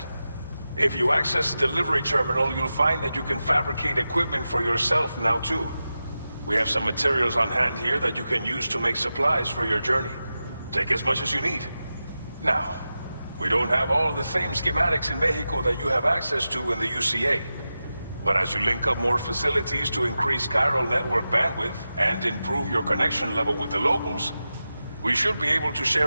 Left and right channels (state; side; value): inverted; both; correlation -0.92